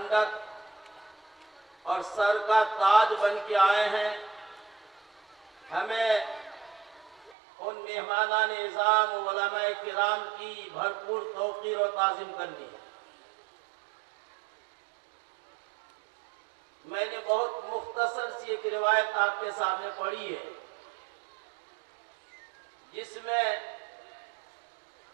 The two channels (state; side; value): drops out; left; at 7.4 s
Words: اور سر کا تاج بن کے آئے ہیں، ہمیں ان مہمانان اعظام علماء کرام کی بھرپور توقیر و تعظیم کرنی ہے۔ میں نے بہت مختصر سی ایک روایت آپ کے سامنے پڑھی ہے، جس میں